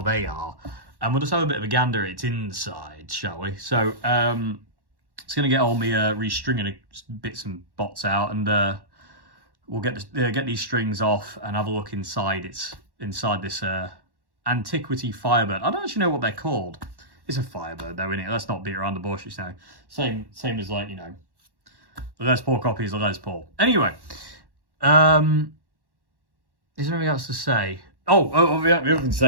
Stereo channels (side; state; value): left; late; 1.1 ms